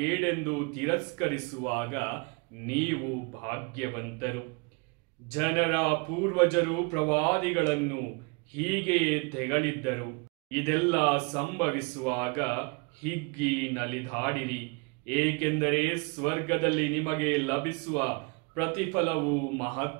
ತಿರಸ್ಕರಿಸುವಾಗ ನೀವು ಭಾಗ್ಯವಂತರು. ಜನರ ಪೂರ್ವಜರು ಪ್ರವಾದಿಗಳನ್ನು ಹೀಗೆಯೇ ತೆಗಳಿದ್ದರು. ಇದೆಲ್ಲ ಸಂಭವಿಸುವಾಗ ಹಿಗ್ಗಿ ನಲಿದಾಡಿರಿ, ಏಕೆಂದರೆ ಸ್ವರ್ಗದಲ್ಲಿ ನಿಮಗೆ ಲಭಿಸುವ ಪ್ರತಿಫಲವು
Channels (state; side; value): quieter; left; 32.3 dB